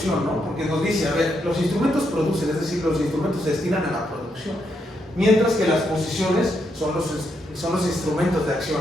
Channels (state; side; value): normal; both; correlation 0.79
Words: no? Porque nos dice, a ver, los instrumentos producen, es decir, los instrumentos se destinan a la producción, mientras que las posiciones son los instrumentos de acción,